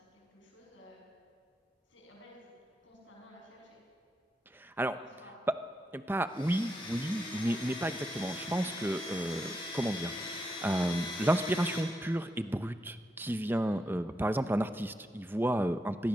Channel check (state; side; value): normal; both; correlation 0.83